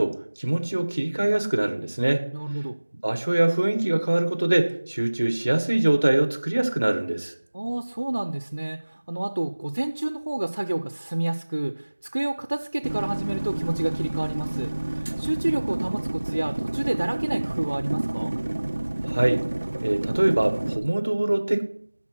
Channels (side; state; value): both; inverted; correlation -1.00